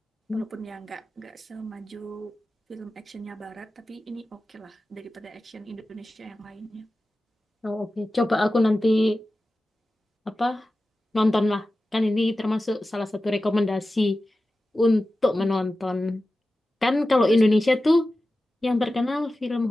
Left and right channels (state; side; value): normal; both; correlation 0.94